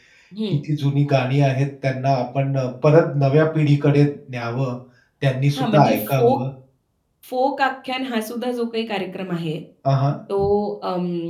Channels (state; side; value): identical; both; correlation 1.00